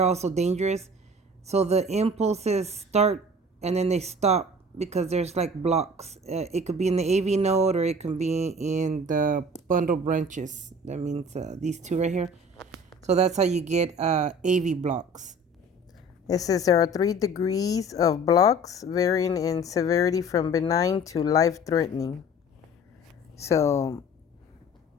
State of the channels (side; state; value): both; normal; correlation 0.44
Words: also dangerous. So the impulses start and then they stop because there's like blocks. It could be in the AV node or it can be in the bundle branches. That means these two right here. So that's how you get AV blocks. It says there are 3 degrees of blocks varying in severity from benign to life-threatening. So